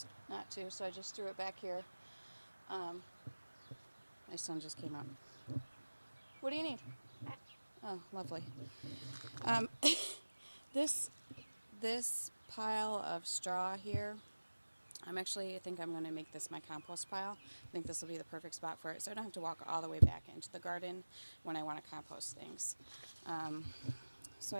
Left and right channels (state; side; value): inverted; both; correlation -1.00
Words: to, so I just threw it back here. My son just came up. What do you need? Oh, lovely. This pile of straw here, I think I'm going to make this my compost pile. I think this will be the perfect spot for it, so I don't have to walk all the way back into the garden when I want to compost things. So